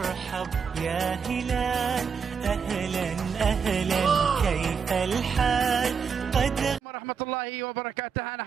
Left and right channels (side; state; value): left; quieter; 6.2 dB